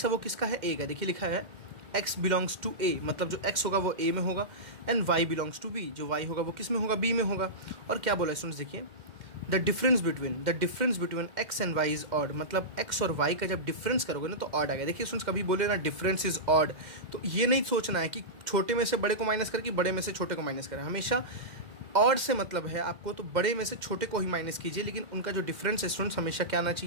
है वो किसका है, ए का, देखिए लिखा है एक्स बिलोंग्स टू ए, मतलब जो एक्स होगा वो ए में होगा, and y belongs to B, जो वाई होगा वो किस में होगा, बी में होगा। और क्या बोला स्टूडेंट्स देखिए, the difference between x and y is odd, मतलब एक्स और वाई का जब डिफरेंस करोगे ना तो ऑड आ गया। देखिए स्टूडेंट्स कभी बोले ना डिफरेंस इज ऑड, तो ये नहीं सोचना है कि छोटे में से बड़े को माइनस करके बड़े में से छोटे को माइनस करें, हमेशा ऑड से मतलब है आपको, तो बड़े में से छोटे को ही माइनस कीजिए, लेकिन उनका जो डिफरेंस है स्टूडेंट्स हमेशा क्या आना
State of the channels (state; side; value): late; left; 2.1 ms